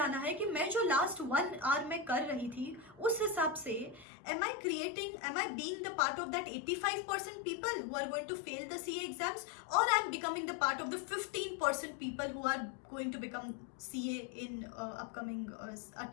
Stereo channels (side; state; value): right; drops out; at 4.0 s